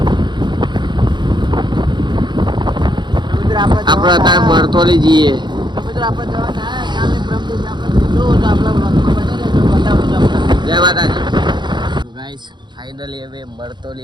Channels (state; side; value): late; left; 0.22 ms